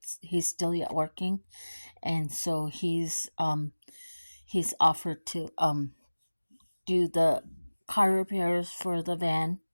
still yet working, and so he's offered to do the car repairs for the van,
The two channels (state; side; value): inverted; both; correlation -1.00